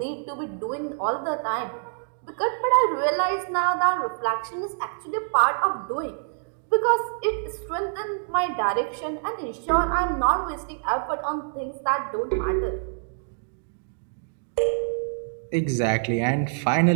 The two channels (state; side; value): silent; left; digital silence